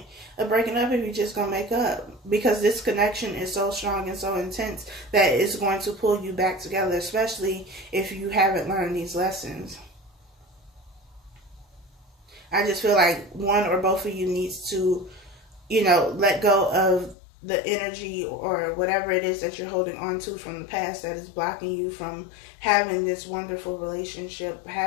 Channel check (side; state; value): right; drops out; at 17.2 s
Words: of breaking up if you're just going to make up? Because this connection is so strong and so intense that it's going to pull you back together, especially if you haven't learned these lessons. I just feel like one or both of you needs to, you know, let go of the energy or whatever it is that you're holding on to from the past that is blocking you from having this wonderful relationship,